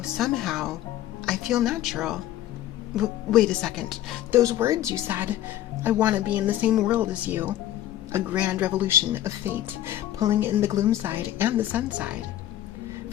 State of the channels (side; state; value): right; quieter; 13.1 dB